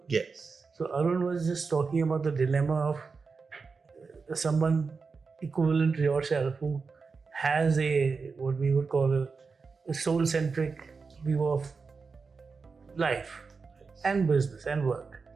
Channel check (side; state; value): left; quieter; 4.8 dB